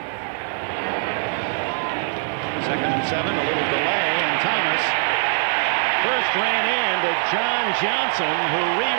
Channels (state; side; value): silent; left; 64 dB below the other